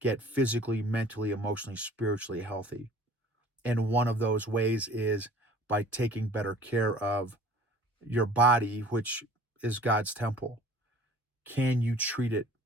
physically, mentally, emotionally, spiritually healthy. And one of those ways is by taking better care of your body, which is God's temple. Can you treat it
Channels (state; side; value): normal; both; correlation 0.48